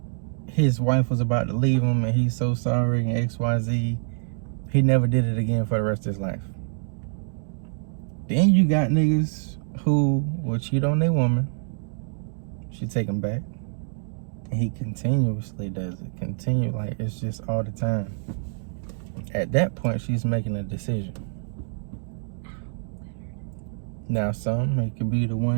his wife was about to leave him and he's so sorry and XYZ, he never did it again for the rest of his life. Then you got niggas who will cheat on their woman. She take him back. And he continuously does it. Like it's just all the time. At that point, she's making a decision. Now, it could be the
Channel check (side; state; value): left; silent; digital silence